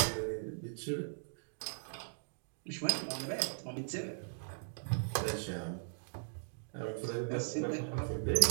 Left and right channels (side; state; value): left; silent; digital silence